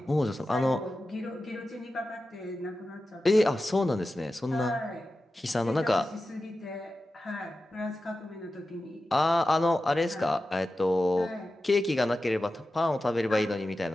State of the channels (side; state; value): both; normal; correlation 0.93